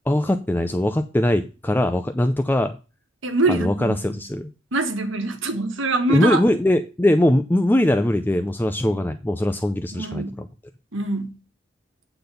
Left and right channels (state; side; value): normal; both; correlation 0.81